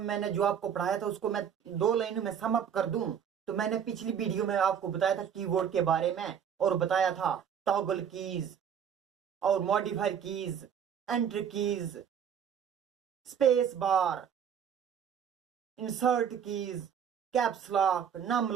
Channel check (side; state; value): left; quieter; 8.2 dB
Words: जो आपको पढ़ाया था उसको मैं 2 लाइनों में सम अप कर दूं। तो मैंने पिछली वीडियो में आपको बताया था कीबोर्ड के बारे में और बताया था टॉगल कीज और modifier keys, enter keys, space bar, insert keys, caps lock, num